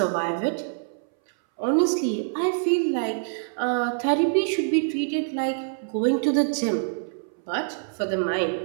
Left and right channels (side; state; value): left; silent; 60 dB below the other